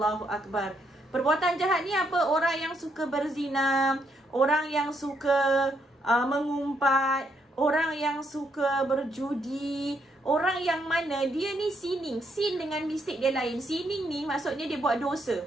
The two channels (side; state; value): both; normal; correlation 0.75